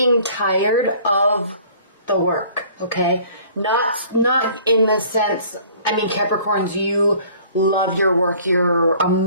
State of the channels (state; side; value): inverted; both; correlation -0.52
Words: tired of the work, okay? Not in the sense, I mean, Capricorns, you love your work, you're